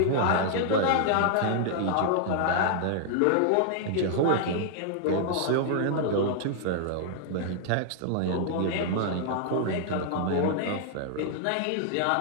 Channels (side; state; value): both; different; correlation -0.01